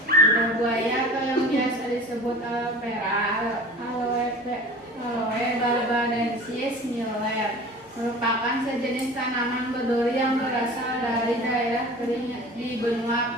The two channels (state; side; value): normal; both; correlation 0.40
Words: Lidah buaya atau yang biasa disebut aloe vera, aloe barbadensis Miller, merupakan sejenis tanaman berduri yang berasal dari daerah kering di benua